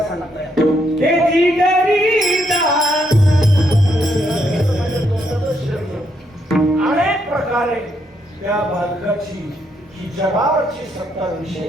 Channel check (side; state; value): both; normal; correlation 0.76